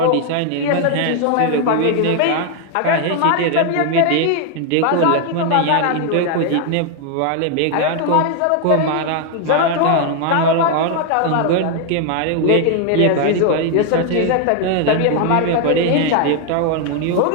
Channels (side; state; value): both; different; correlation 0.01